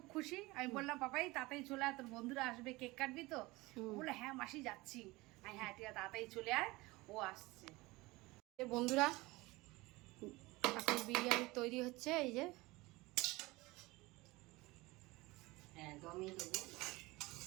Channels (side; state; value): left; quieter; 21.6 dB